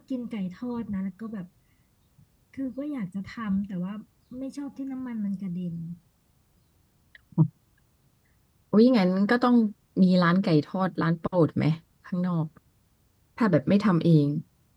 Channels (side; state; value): both; identical; correlation 1.00